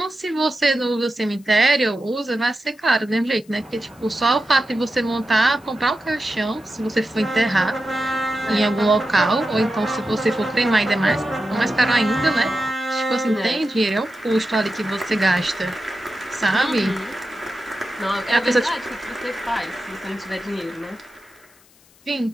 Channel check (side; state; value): left; noise; hiss, 29 dB below the sound